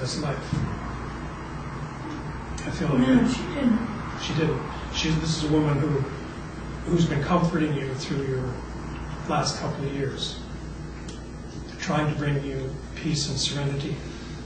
life. I feel like No, she didn't. she didn't. This is a woman who's been comforting you through your last couple of years, trying to bring you peace and serenity,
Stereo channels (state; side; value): identical; both; correlation 1.00